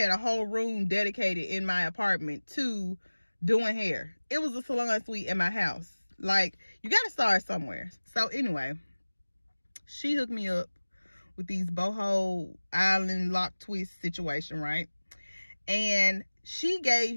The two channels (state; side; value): inverted; both; correlation -1.00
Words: a whole room dedicated in my apartment to doing hair. It was a salon suite in my house. Like, you got to start somewhere. So anyway, she hooked me up with these boho island lock twist situation, right? And she